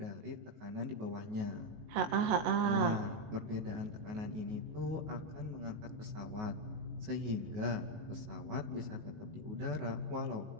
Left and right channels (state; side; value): late; left; 19 ms